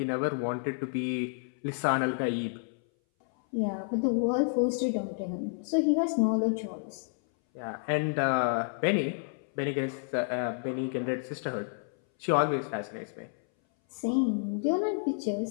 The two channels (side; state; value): right; silent; 58 dB below the other